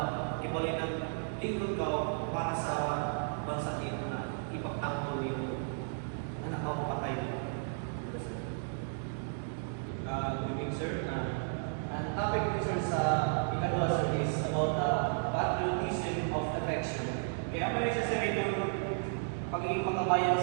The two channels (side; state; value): left; silent; digital silence